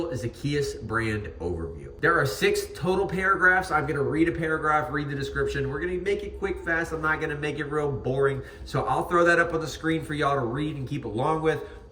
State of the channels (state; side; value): identical; both; correlation 1.00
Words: Zakeiuz brand overview. There are 6 total paragraphs. I'm gonna read a paragraph, read the description. We're gonna make it quick, fast. I'm not gonna make it real boring. So I'll throw that up on the screen for y'all to read and keep along with,